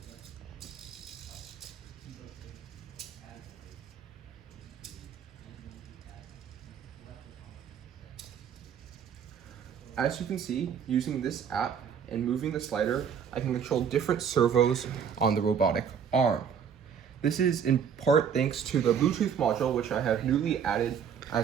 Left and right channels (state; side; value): quieter; left; 7.5 dB